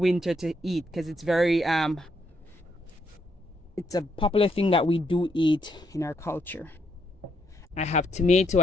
to eat, because it's very it's a popular thing that we do eat in our culture. I have tomato.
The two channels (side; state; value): both; normal; correlation 0.75